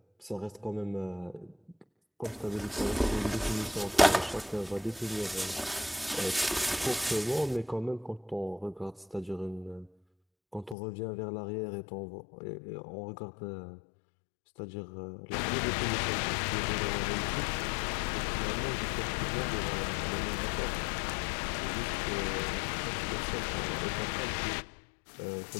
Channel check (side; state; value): right; drops out; at 10.8 s